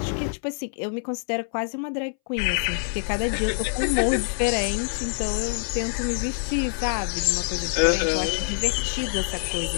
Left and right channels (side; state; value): right; silent; 61 dB below the other